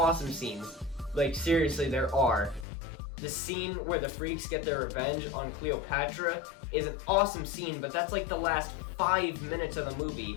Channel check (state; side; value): drops out; right; at 2.7 s